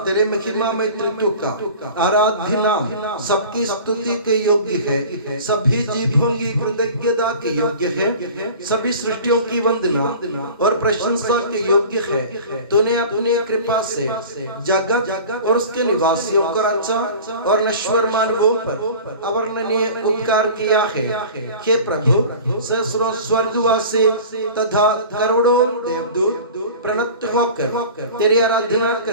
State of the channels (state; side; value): inverted; both; correlation -0.40